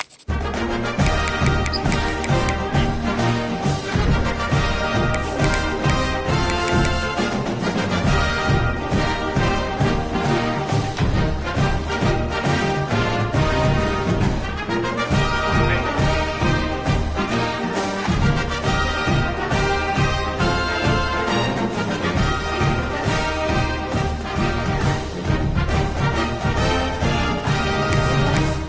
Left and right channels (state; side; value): identical; both; correlation 1.00